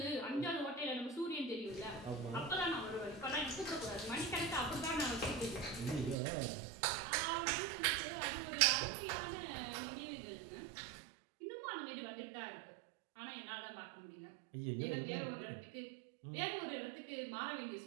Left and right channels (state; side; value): drops out; left; at 6.2 s